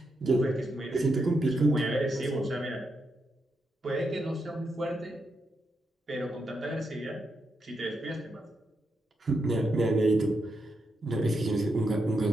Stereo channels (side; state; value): both; normal; correlation 0.83